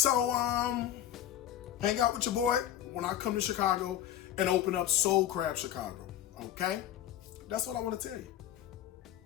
hang out with your boy when I come to Chicago and open up Soul Crab Chicago, okay? That's what I want to tell you.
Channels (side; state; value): right; quieter; 11.6 dB